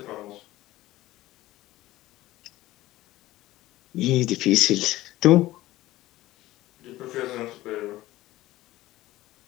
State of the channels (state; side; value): quieter; right; 16.7 dB